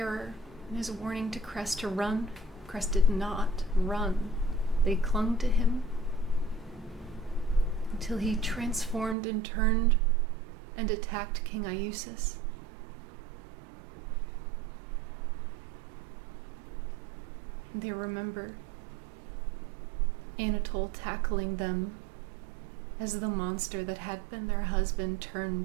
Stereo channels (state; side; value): drops out; left; at 9.2 s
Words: and his warning to Cress to run. Cress did not run. They clung to him until he transformed and turned and attacked King Iusis. They remember Anatole tackling them as the monster that had been their husband